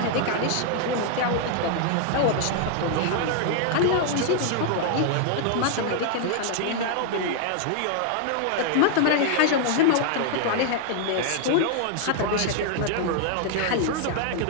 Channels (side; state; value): both; different; correlation 0.00